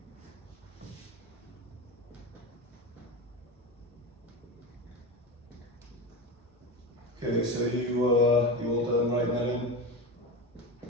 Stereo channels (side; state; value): both; normal; correlation 0.22